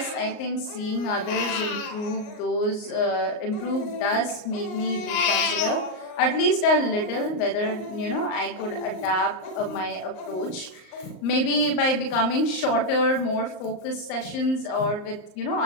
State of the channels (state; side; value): late; right; 38 ms